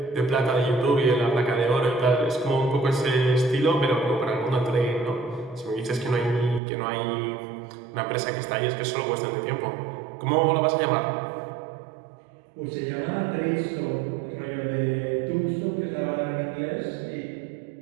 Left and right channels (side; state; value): left; drops out; at 6.6 s